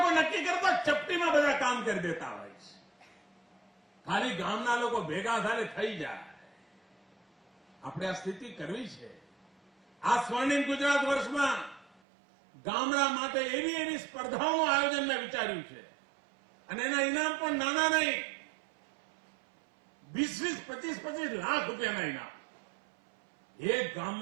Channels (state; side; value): drops out; left; at 12.0 s